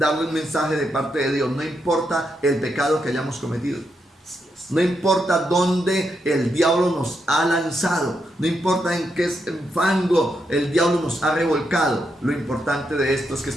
un mensaje de parte de Dios. No importa el pecado que hayamos cometido. No importa dónde el diablo nos ha lanzado, no importa en qué fango el diablo nos ha revolcado. Lo importante de esto es que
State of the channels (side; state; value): both; normal; correlation 0.82